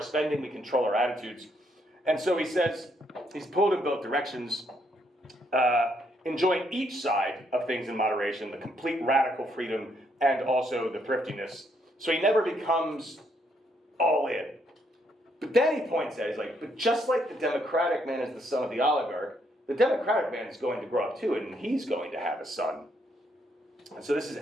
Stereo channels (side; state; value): both; normal; correlation 0.73